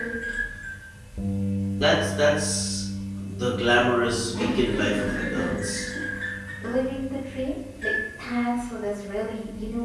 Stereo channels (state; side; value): identical; both; correlation 1.00